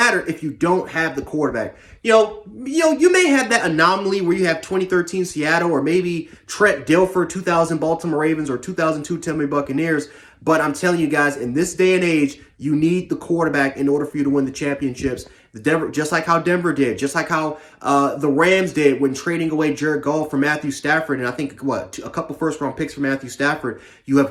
if you don't have the quarterback. You may have that anomaly where you have 2013 Seattle or maybe Trent Dilfer, 2000 Baltimore Ravens or 2002 Tampa Bay Buccaneers. But I'm telling you guys, in this day and age, you need the quarterback in order for you to win the championships. Just like how Denver did, just like how the Rams did when trading away Jared Goff for Matthew Stafford, and I think, a couple first-round picks for Matthew Stafford. You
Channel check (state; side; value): identical; both; correlation 1.00